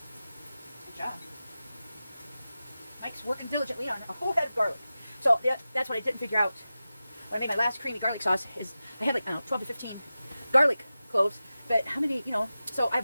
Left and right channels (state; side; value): inverted; both; correlation -0.94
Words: Good job. Mike's working diligently on a whole head of garlic. So that's what I didn't figure out when I made my last creamy garlic sauce. Is I had like 12 to 15 garlic cloves, but how many? So I